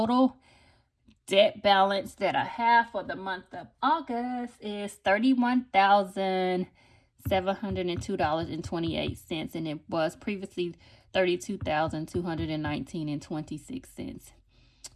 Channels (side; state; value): both; identical; correlation 1.00